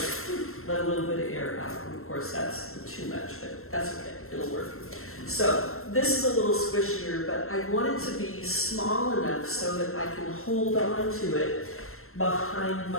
air out. And of course, that's too much, but that's okay. It'll work. So this is a little squishier, but I want it to be small enough so that I can hold on to it behind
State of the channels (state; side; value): late; right; 0.62 ms